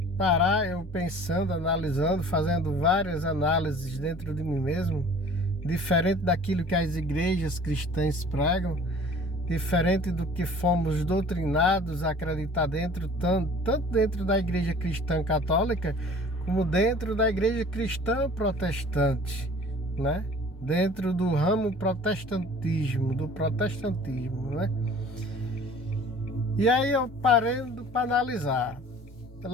analisando, fazendo várias análises dentro de mim mesmo, diferente daquilo que as igrejas cristãs pregam, diferente do que fomos doutrinados a acreditar tanto dentro da igreja cristã católica, como dentro da igreja cristã protestante, né? Dentro do ramo do protestantismo, né? E aí eu parando para analisar.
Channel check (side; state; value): both; normal; correlation 0.47